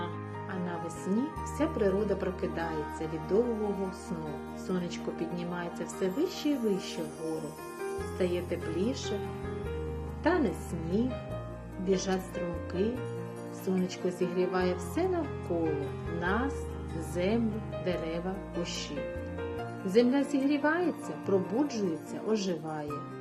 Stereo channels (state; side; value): identical; both; correlation 1.00